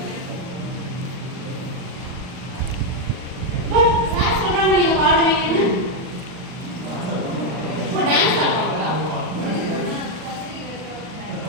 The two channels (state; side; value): late; left; 39 ms